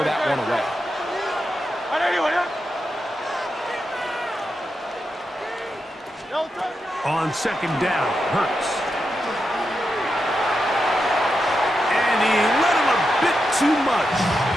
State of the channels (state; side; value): normal; both; correlation 0.87